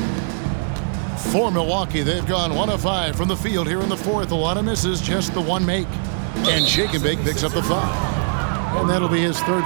For Milwaukee, they've gone 1 of 5 from the field here in the fourth. A lot of misses, just the 1 make. And Shake and Bake picks up the foul. And that'll be his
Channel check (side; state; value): left; silent; digital silence